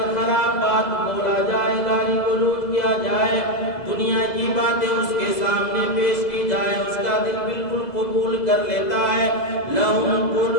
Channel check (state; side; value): late; right; 2.0 ms